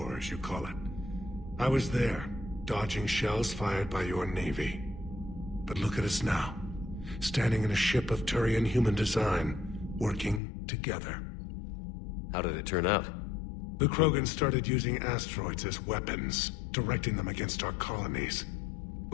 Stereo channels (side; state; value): right; drops out; at 10.4 s